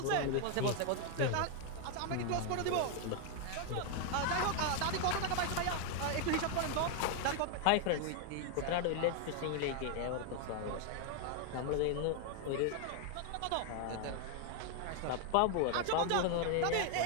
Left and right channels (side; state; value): both; different; correlation 0.00